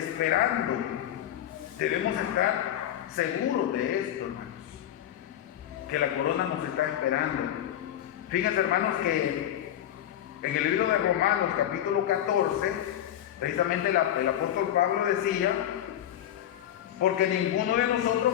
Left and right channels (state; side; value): quieter; right; 11.5 dB